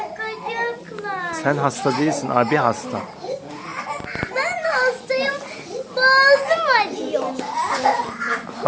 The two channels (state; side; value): identical; both; correlation 1.00